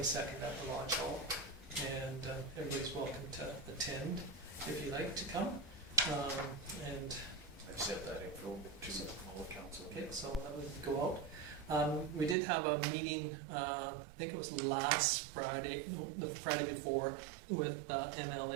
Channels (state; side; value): drops out; left; at 12.4 s